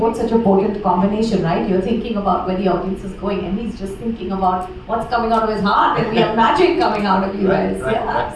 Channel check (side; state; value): both; identical; correlation 1.00